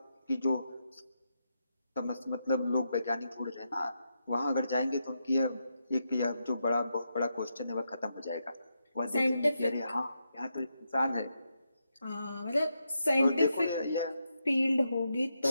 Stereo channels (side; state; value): both; inverted; correlation -0.84